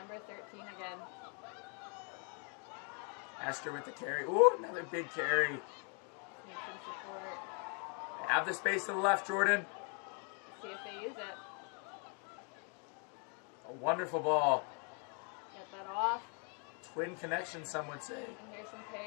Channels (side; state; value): right; quieter; 38.8 dB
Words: 13 again. Esther with the carry. Ooh, another big carry. Need some support. Have the space to the left, Jordan. See if they use it. A wonderful ball. Get that off. Twin connection, some would say. And here's some